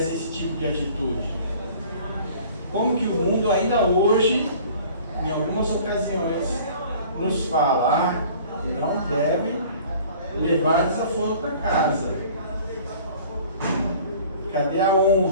esse tipo de atitude? Como que o mundo ainda hoje, em algumas ocasiões, nos fala, não deve levar desaforo para casa. Cadê a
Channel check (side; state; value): both; inverted; correlation -0.48